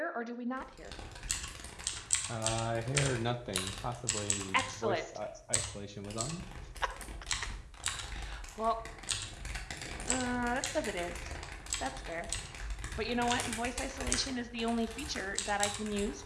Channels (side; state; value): both; identical; correlation 1.00